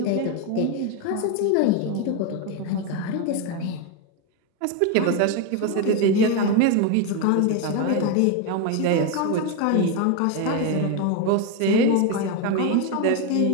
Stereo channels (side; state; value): both; different; correlation 0.02